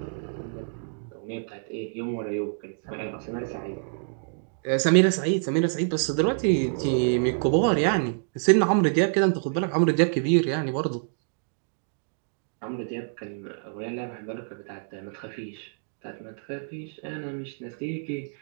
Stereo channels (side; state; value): left; silent; digital silence